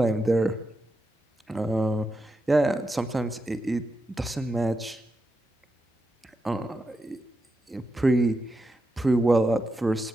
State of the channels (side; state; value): both; normal; correlation 0.87